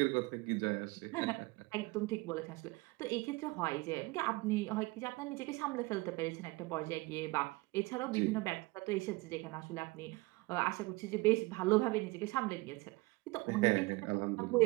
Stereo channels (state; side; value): quieter; left; 23.3 dB